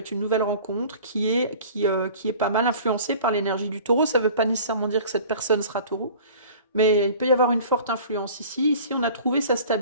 une nouvelle rencontre qui est pas mal influencée par l'énergie du taureau. Ça ne veut pas nécessairement dire que cette personne sera taureau, mais il peut y avoir une forte influence ici. Ici, on a trouvé sa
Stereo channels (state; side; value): inverted; both; correlation -0.44